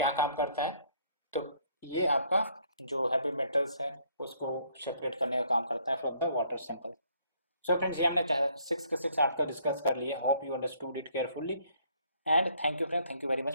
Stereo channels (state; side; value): inverted; both; correlation -0.65